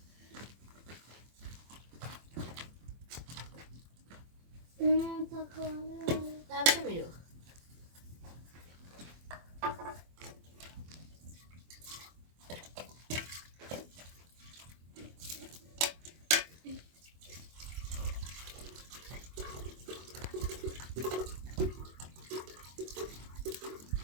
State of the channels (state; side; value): late; left; 24 ms